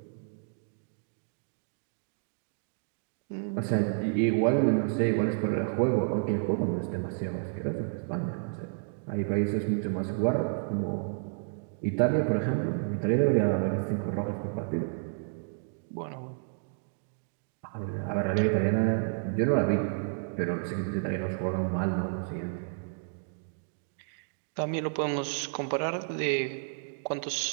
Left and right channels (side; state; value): left; silent; digital silence